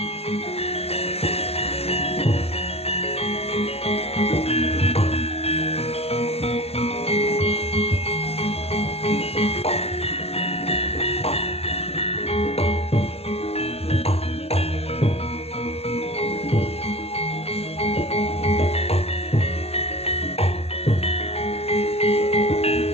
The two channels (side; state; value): right; late; 0.29 ms